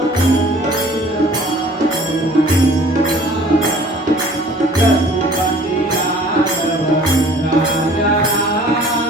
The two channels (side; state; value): both; normal; correlation 0.50